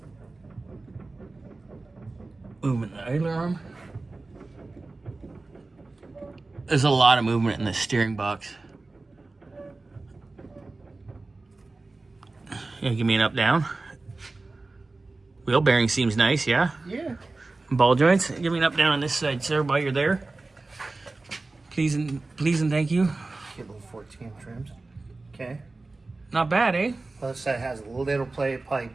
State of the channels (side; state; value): left; quieter; 3.4 dB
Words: Movement in the idler arm. There's a lot of movement in the steering box. Yeah, give me an up-down. Wheel bearing seems nice, yeah? Yeah. Ball joints. Give me an up-down on this side, sir, while you're there. Please and thank you. Get little 14 trims. Okay. Not bad, eh? Other side has a little play. Probably